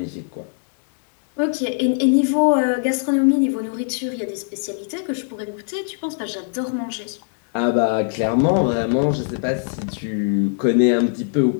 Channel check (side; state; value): right; silent; digital silence